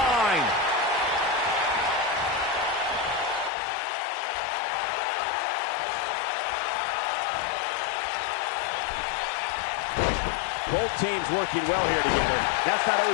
Both teams working well here together. That's not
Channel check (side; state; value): right; drops out; at 3.5 s